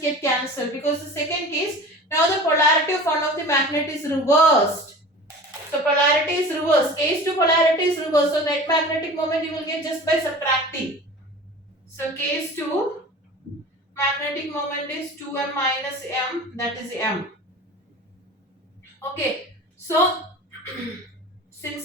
get cancelled, because the second case, now the polarity of one of the magnet is reversed. So polarity is reversed. Case 2 polarity is reversed. So net magnetic moment you will get just by subtracting. So case 2 magnetic moment is 2m minus m, that is m. Okay, so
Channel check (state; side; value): normal; both; correlation 0.38